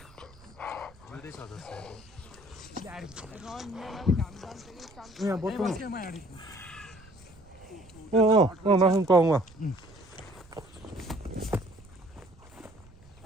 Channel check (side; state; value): right; noise; rumble, 23 dB below the sound